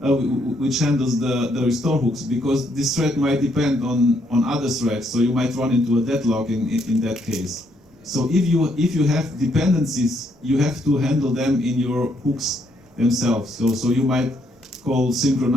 which handles the restore hooks, because this thread might depend on other threads, so you might run into a deadlock in that case. So if you have dependencies, you have to handle them in your hooks themselves. So you might call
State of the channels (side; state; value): both; normal; correlation 0.73